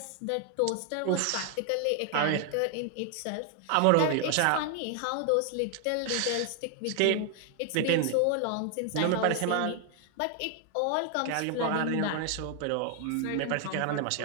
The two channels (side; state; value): both; different; correlation 0.00